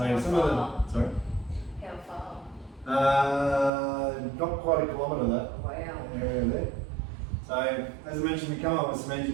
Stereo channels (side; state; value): left; drops out; at 3.7 s